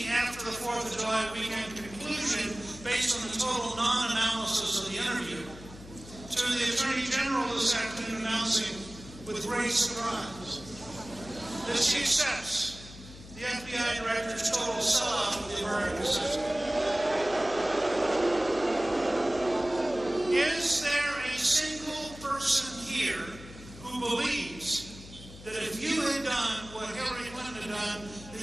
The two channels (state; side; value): noise; left; hum, 16 dB below the sound